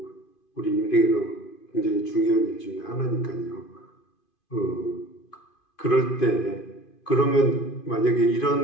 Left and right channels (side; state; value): right; late; 2.5 ms